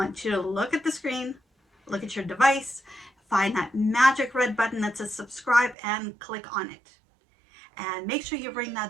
you to look at the screen, look at your device, find that magic red button that says subscribe and click on it. And make sure you ring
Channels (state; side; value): drops out; left; at 5.8 s